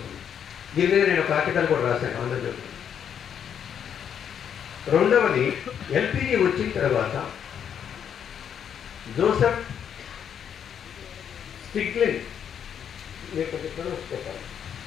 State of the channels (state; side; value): quieter; right; 8.4 dB